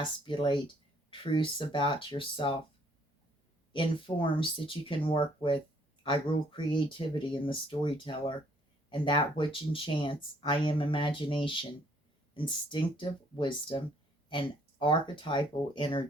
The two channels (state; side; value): normal; both; correlation 0.64